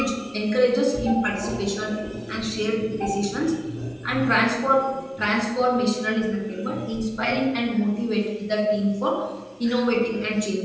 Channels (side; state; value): both; identical; correlation 1.00